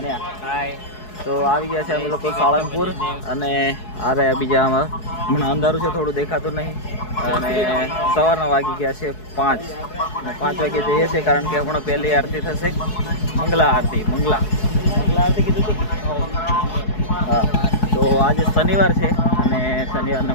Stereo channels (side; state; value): right; late; 4.7 ms